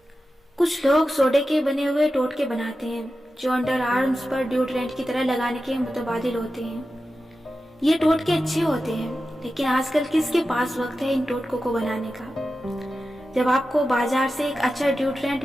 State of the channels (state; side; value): normal; both; correlation 0.92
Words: کچھ لوگ سوڈے کے بنے ہوئے ٹوٹکے بناتے ہیں جو انڈر آرمز پر ڈیوڈرنٹ کی طرح لگانے کے متبادل ہوتے ہیں۔ یہ ٹوٹکے اچھے ہوتے ہیں، لیکن آج کل کس کے پاس وقت ہے ان ٹوٹکوں کو بنانے کا؟ جب آپ کو بازار سے ایک اچھا ڈیوڈرنٹ